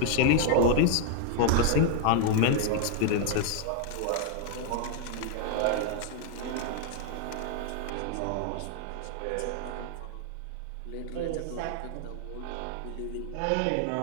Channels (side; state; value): both; different; correlation 0.00